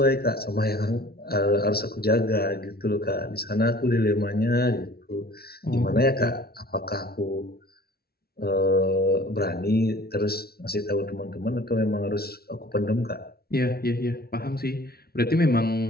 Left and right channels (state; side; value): late; right; 0.45 ms